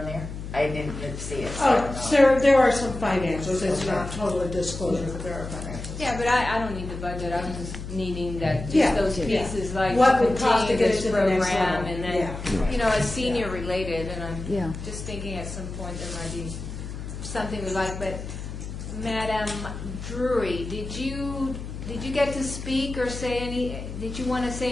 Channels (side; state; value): left; noise; hum, 8 dB below the sound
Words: there? I didn't see it, so I don't know. So there are some financials, it's not totally disclosure, but there are financials. Yeah, but I don't need the budget. I'm just needing that, Yeah, just those yeah. pieces, like What to would cost to continue get it this to the next program, level. and then, Yeah. you know, as senior related, and Yeah. I'm just thinking at some point there might be something we like, but Madam Drury, did you get to speak or say did you want to